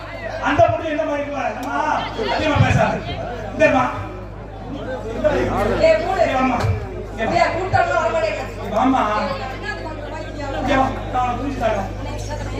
அந்த பொண்ணு என்ன மாதிரி இருக்கா? அம்மா அதிகமா பேசாத. இந்தம்மா ஏய் மூடு. அம்மா ஏய் கூட்டம்ல வர மாட்டேங்க. அம்மா இங்க வா. நான் புரிஞ்சுட்டாங்க.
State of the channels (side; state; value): both; identical; correlation 1.00